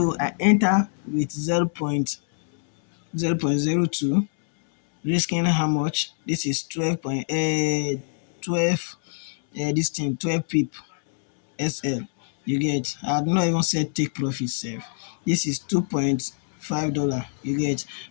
I enter with 0.02, risking how much? This is 12 this thing 12 pip SL. You get, I had not even said take profit sef. This is $2.5. You get,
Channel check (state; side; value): silent; right; 62 dB below the other